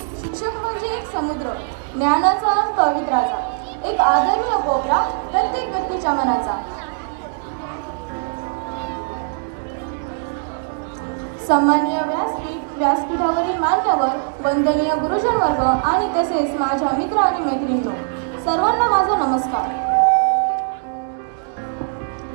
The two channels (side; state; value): left; silent; digital silence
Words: शिक्षक म्हणजे एक समुद्र, ज्ञानाचा आणि पवित्राचा, एक आदरणीय कोपरा प्रत्येक व्यक्तीच्या मनाचा. सन्माननीय व्यासपीठावरील मान्यवर, वंदनीय गुरुजन वर्ग आणि तसेच माझ्या मित्र आणि मैत्रिणींनो, सर्वांना माझा नमस्कार.